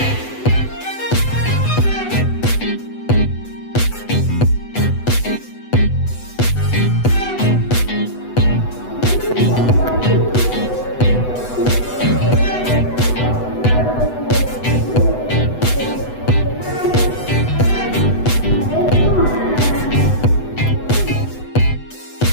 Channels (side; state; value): right; late; 8.0 ms